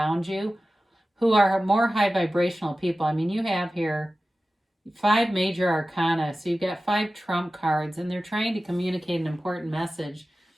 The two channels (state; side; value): normal; both; correlation 0.95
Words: you who are more high vibrational people. I mean, you have here 5 major arcana. So you've got 5 trump cards, and they're trying to communicate an important message.